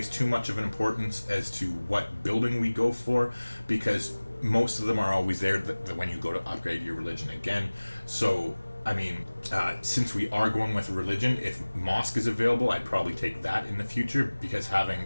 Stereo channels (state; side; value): inverted; both; correlation -1.00